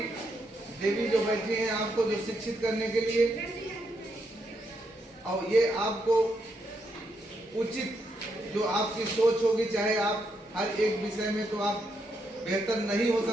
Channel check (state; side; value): normal; both; correlation 0.79